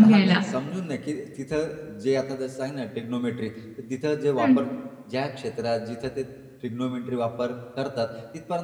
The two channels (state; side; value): identical; both; correlation 1.00